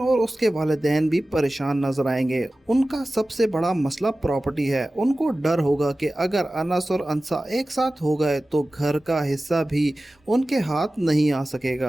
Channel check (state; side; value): normal; both; correlation 0.96